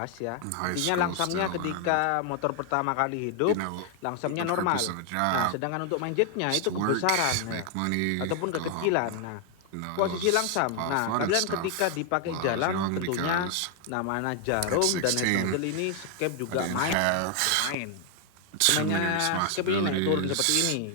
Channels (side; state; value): both; different; correlation 0.00